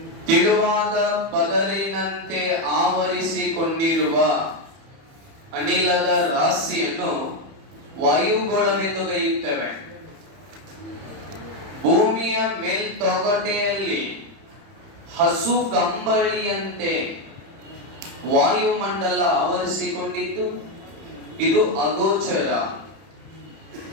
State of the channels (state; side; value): late; left; 30 ms